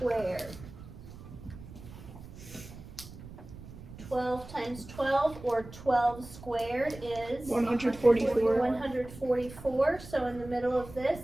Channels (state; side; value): noise; right; rumble, 15 dB below the sound